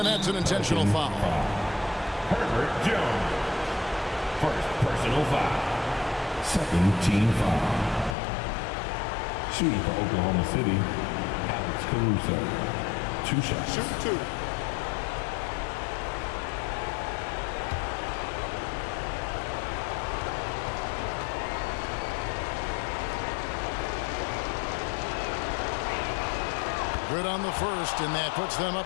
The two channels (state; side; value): drops out; right; at 8.2 s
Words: that's an intentional foul. Herbert Jones. First personal foul. Second team foul. Shooting for Oklahoma City, Alex Caruso. 2 shots. Shoot 2. Good on the first, and that puts them